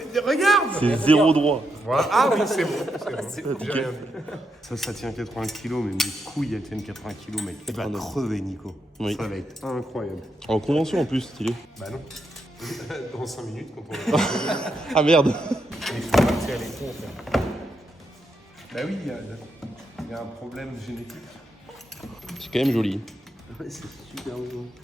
Regarde. C'est zéro droit. Voilà. Ah oui, c'est bon. C'est bon. J'ai rien dit. Ça tient 80 kilos, mais mes couilles, elles tiennent 80 kilos, mec. Tu vas crever, Nico. Oui. Ça va être incroyable. En convention en plus, stylé. Bah non. Dans 5 minutes, quand on va... Ah merde. Il faut partir à l'écran, frère. Bah oui, il y a un problème génétique. C'est quand même joli. Ouais, c'est super beau.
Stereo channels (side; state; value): both; normal; correlation 0.82